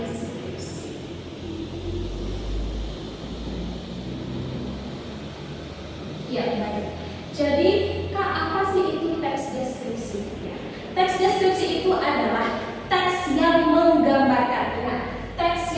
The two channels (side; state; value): both; identical; correlation 1.00